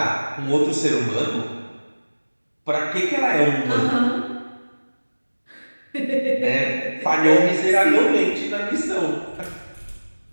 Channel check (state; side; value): inverted; both; correlation -1.00